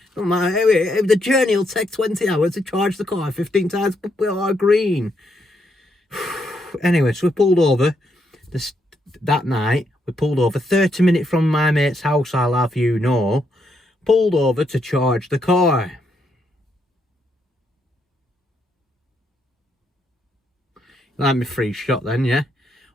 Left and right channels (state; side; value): normal; both; correlation 0.77